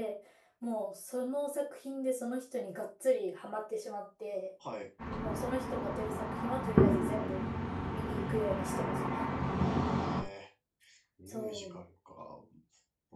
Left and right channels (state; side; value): identical; both; correlation 1.00